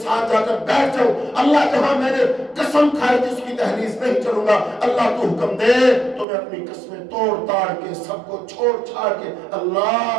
ساتھ جا کر بیٹھ جاؤں، اللہ جہاں میں نے قسم کھائی تھی اس کی دہلیز نہیں چلوں گا، اللہ تو حکم دے تو میں اپنی قسمیں توڑ تاڑ کے سب کو چھوڑ چھاڑ کے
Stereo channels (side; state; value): left; drops out; at 6.2 s